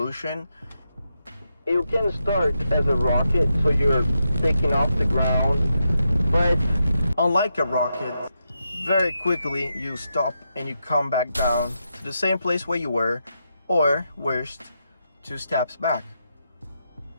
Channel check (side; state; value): both; inverted; correlation -0.85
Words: you can start as a rocket, so you're taking off the ground, but unlike a rocket, very quickly you stop and you come back down to the same place where you were, or worst, 2 steps back.